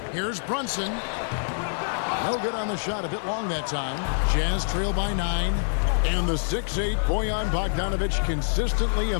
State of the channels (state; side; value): silent; right; digital silence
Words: Here's Brunson. No good on the shot. A bit long that time. Jazz trail by 9. And the 6'8" Bojan Bogdanovich consistently